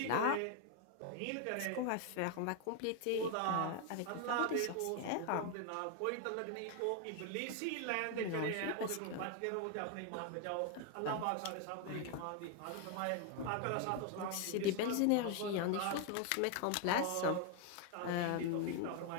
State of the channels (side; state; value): both; different; correlation 0.01